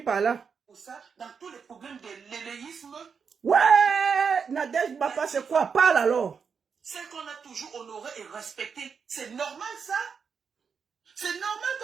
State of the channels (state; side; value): quieter; left; 6.1 dB